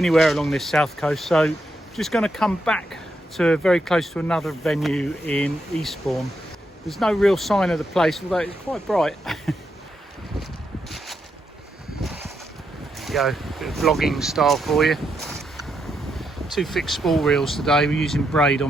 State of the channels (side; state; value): both; normal; correlation 0.81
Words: along this south coast, so just going to come back to very close to another venue in Eastbourne. There's no real sign of the place, although it's quite bright. Go, bit of vlogging style for you. 2 fixed spool reels today. We're using braid